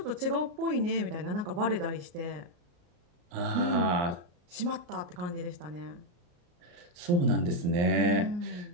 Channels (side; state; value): left; late; 34 ms